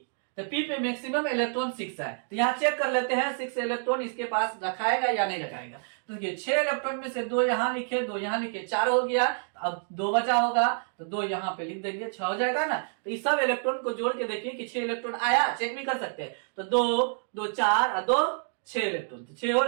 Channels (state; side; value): silent; left; digital silence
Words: तो पी पे मैक्सिमम इलेक्ट्रॉन 6 है, तो यहाँ चेक कर लेते हैं 6 इलेक्ट्रॉन इसके पास रखाएगा या नहीं रखाएगा। तो देखिए 6 इलेक्ट्रॉन में से 2 यहाँ लिखे, 2 यहाँ लिखे, 4 हो गया। अब 2 बचा होगा तो 2 यहाँ पे लिख देंगे, 6 हो जाएगा ना। तो इस सब इलेक्ट्रॉन को जोड़ के देखिए कि 6 इलेक्ट्रॉन आया, चेक भी कर सकते हैं। तो 2 2 4 और 2 6 इलेक्ट्रॉन, तो 6 हो